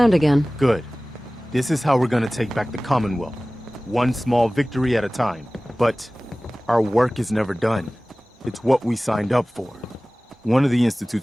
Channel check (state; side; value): normal; both; correlation 0.98